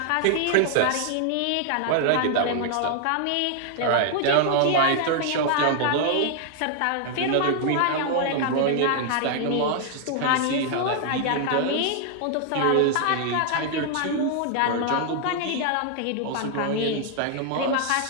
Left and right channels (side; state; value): both; different; correlation 0.00